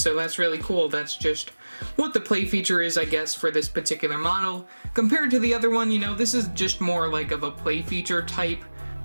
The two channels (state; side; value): inverted; both; correlation -1.00